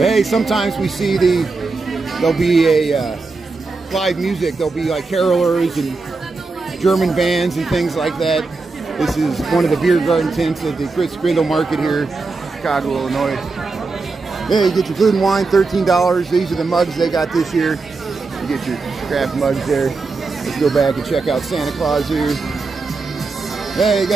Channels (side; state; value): left; quieter; 4.0 dB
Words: sometimes we see there'll be a live music. There'll be like carolers and German bands and things like that. This is one of the beer garden tents at the Christkindl market here, Chicago, Illinois. Yeah, you get your food and wine, $13. These are the mugs they got this year. You get your craft mugs there. Let's go back and check out Santa Claus here. Hey, you